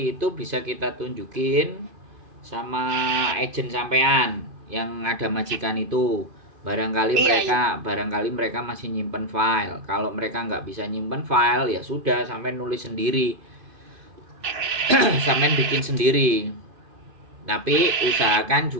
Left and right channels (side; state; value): left; late; 2.5 ms